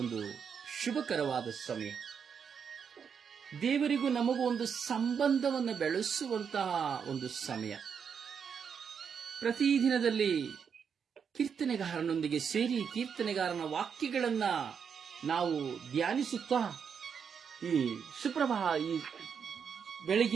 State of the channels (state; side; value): quieter; left; 6.9 dB